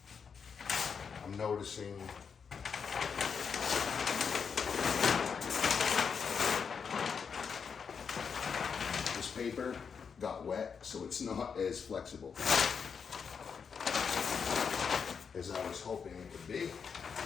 I'm noticing this paper got wet, so it's not as flexible as I was hoping it would be.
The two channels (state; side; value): quieter; right; 6.3 dB